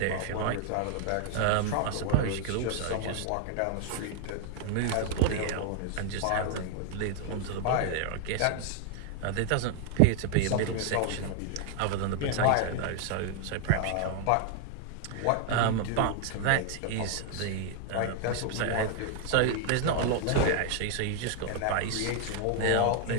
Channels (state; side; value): different; both; correlation 0.00